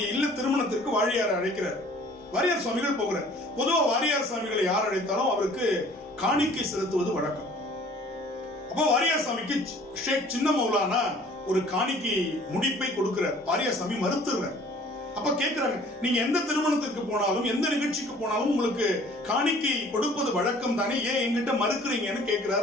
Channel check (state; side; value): normal; both; correlation 0.52